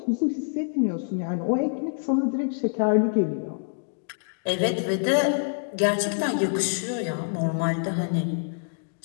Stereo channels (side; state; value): right; silent; digital silence